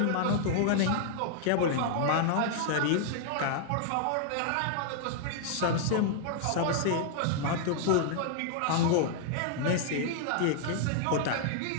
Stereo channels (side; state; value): both; different; correlation -0.01